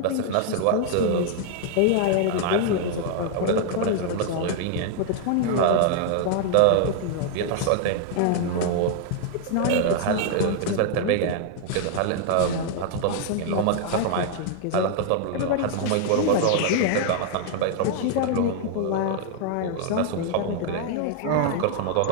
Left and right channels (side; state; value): both; different; correlation 0.00